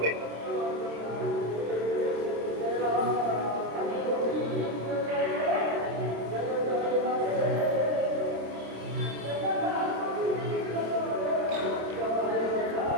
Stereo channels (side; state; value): left; late; 26 ms